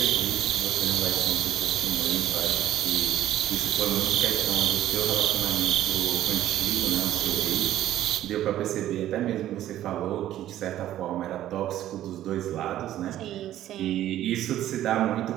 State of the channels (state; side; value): quieter; left; 12.8 dB